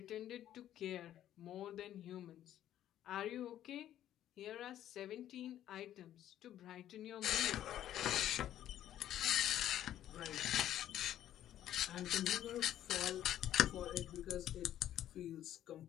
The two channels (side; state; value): right; quieter; 11.9 dB